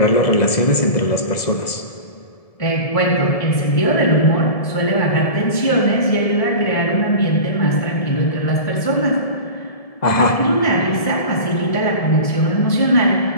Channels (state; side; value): late; right; 1.7 ms